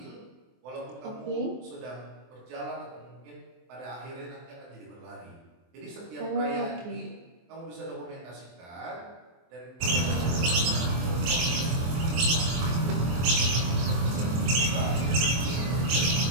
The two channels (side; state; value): left; late; 23 ms